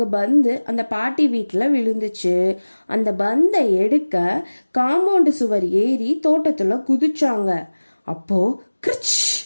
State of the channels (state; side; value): inverted; both; correlation -1.00